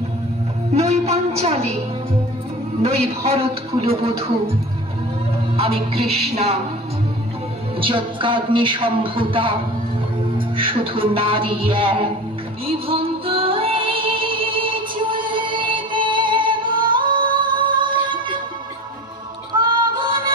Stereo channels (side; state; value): both; normal; correlation 0.36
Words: নই পাঞ্চালী, নই ভরত কুলবধূ। আমি কৃষ্ণা, যজ্ঞাগ্নি সম্ভূতা, শুধু নারী এক। বিভক্ত